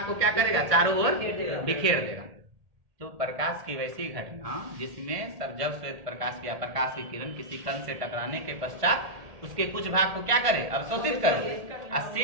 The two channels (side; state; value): left; late; 1.7 ms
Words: को क्या करेगा, चारों ओर बिखेर देगा। तो प्रकाश की वैसी घटना जिसमें जब श्वेत प्रकाश या प्रकाश की किरण किसी कण से टकराने के पश्चात उसके कुछ भाग को क्या करे, अवशोषित कर ले, और